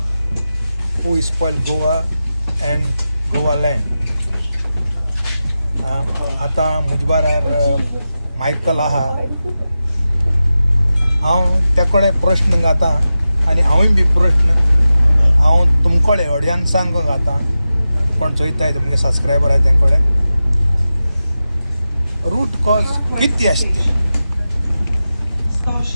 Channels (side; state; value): both; inverted; correlation -0.93